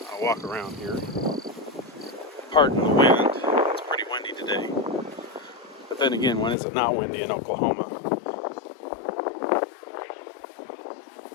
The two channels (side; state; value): right; drops out; at 6.6 s